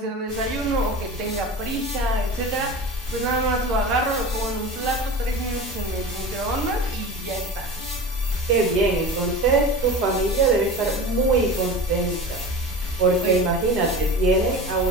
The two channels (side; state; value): both; normal; correlation 0.32